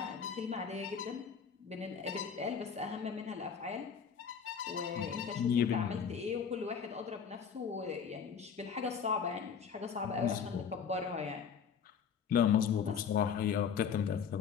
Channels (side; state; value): right; quieter; 6.9 dB